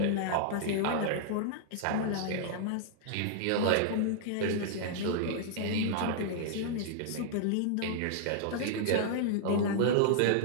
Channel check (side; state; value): both; different; correlation -0.01